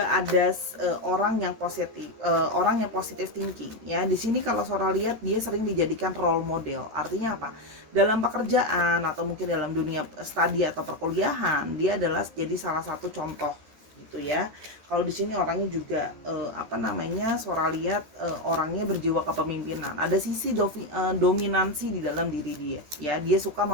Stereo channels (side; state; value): left; late; 14 ms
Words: ada orang yang positif thinking. Ya, di sini kalau Sora lihat dia sering dijadikan role model. Artinya apa? Dalam pekerjaan atau mungkin dalam dunia studi atau perkuliahan, dia adalah jadi salah satu contoh gitu ya. Kalau di sini orangnya juga Sora lihat orangnya berjiwa kepemimpinan. Ada sisi dominansi di dalam diri dia, ya. Dia suka